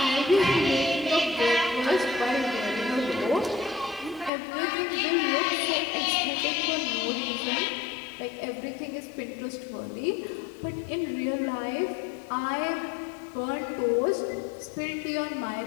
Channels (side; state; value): right; drops out; at 4.3 s